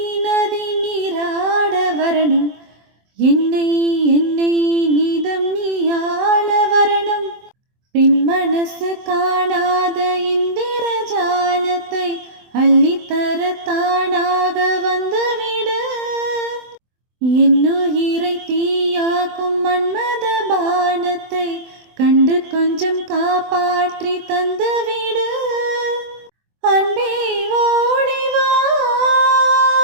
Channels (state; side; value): late; left; 24 ms